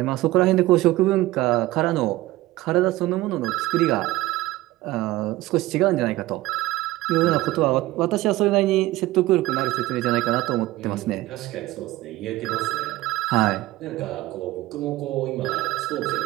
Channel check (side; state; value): left; quieter; 17.7 dB